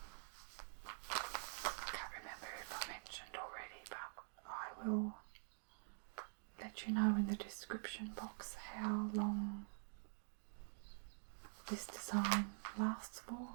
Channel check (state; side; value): silent; left; digital silence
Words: can't remember if I mentioned already, but I will let you know in the description box how long this design lasts for,